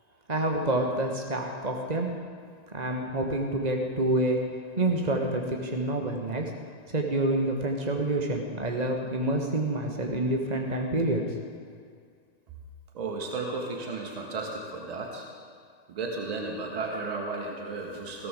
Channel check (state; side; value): late; left; 1.9 ms